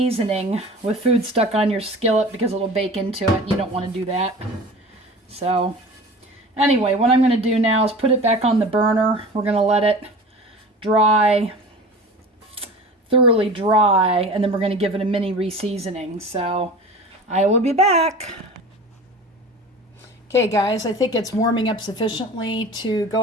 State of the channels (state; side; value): normal; both; correlation 0.38